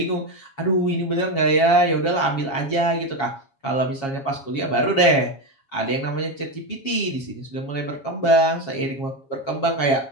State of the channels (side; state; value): right; late; 7.3 ms